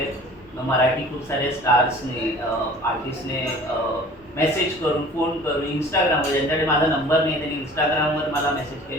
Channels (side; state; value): both; normal; correlation 0.46